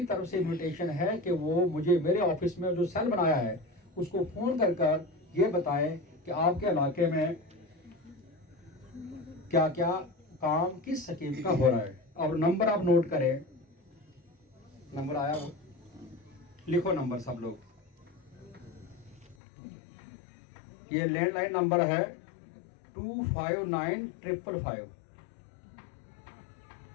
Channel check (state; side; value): drops out; right; at 19.4 s